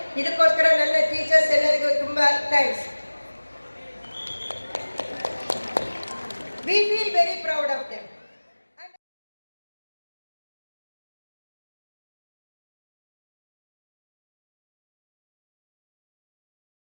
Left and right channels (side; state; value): both; inverted; correlation -1.00